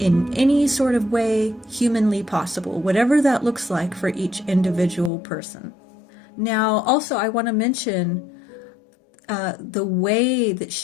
any sort of way humanly possible, whatever that looks like for each individual person. Now, also, I want to mention the way that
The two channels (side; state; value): right; drops out; at 5.1 s